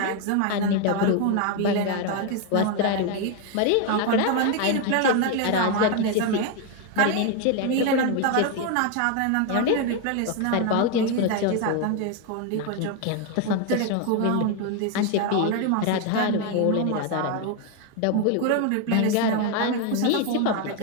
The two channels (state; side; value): different; both; correlation 0.01